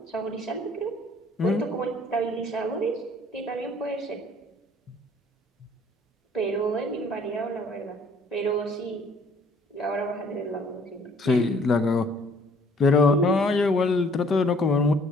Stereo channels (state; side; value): normal; both; correlation 0.59